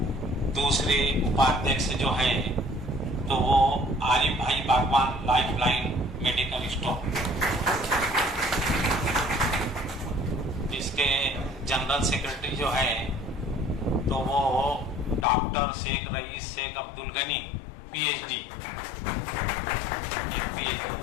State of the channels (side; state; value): right; drops out; at 15.2 s